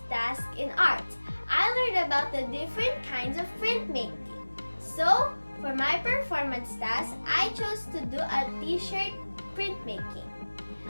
task in art. I learned about the different kinds of printmaking. So for my performance task, I chose to do a t-shirt printmaking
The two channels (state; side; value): inverted; both; correlation -1.00